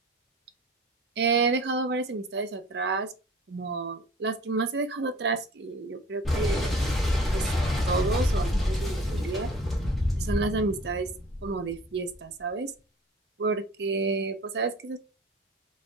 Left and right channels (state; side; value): normal; both; correlation 0.44